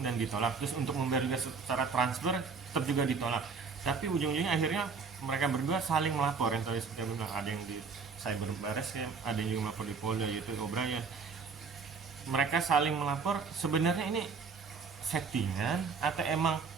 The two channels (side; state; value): left; quieter; 5.2 dB